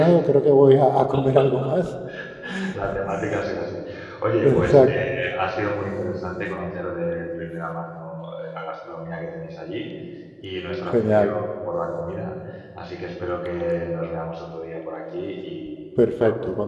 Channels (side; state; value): both; identical; correlation 1.00